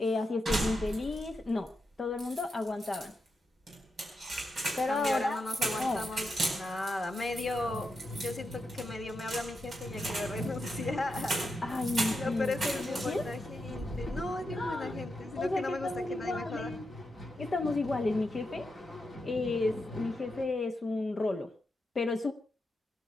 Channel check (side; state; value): both; normal; correlation 0.86